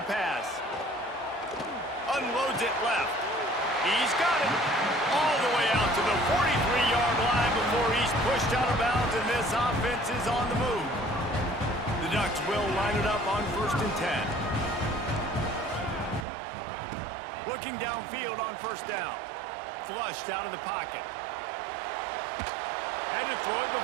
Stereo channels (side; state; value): left; drops out; at 16.2 s